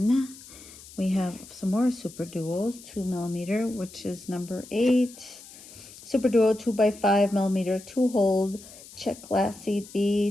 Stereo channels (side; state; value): left; noise; hiss, 19 dB below the sound